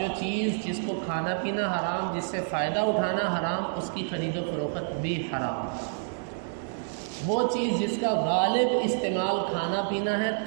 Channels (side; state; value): left; silent; digital silence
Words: چیز جس کو کھانا پینا حرام، جس سے فائدہ اٹھانا حرام، اس کی خرید و فروخت بھی حرام۔ وہ چیز جس کا غالب استعمال کھانا پینا ہے،